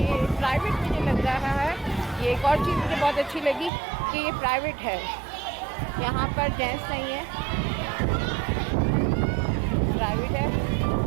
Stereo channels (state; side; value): drops out; left; at 3.7 s